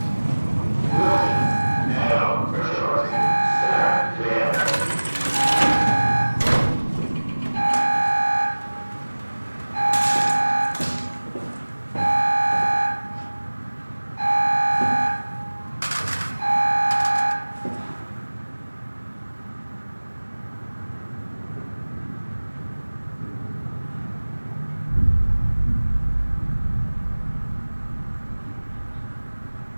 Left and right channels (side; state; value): both; inverted; correlation -1.00